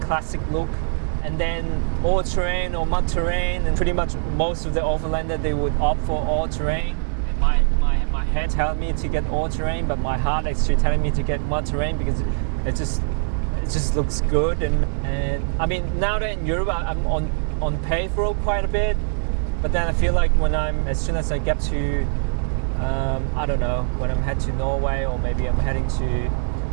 classic look. And then all terrain or mud terrain, and pretty much most of the overlander they would opt for all terrain. And my head telling me to get all terrain, but my heart actually telling me to get mud terrain because it just looks good. And I mean, now that in Europe I'm on paved road quite a bit, but then I feel like as soon as I get to I don't know, when I'm heading to Norway, or maybe I'm heading to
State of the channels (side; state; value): left; silent; digital silence